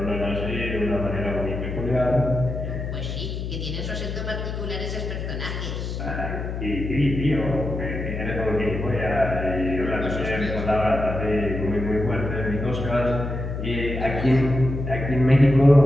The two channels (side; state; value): left; noise; hum, 5 dB below the sound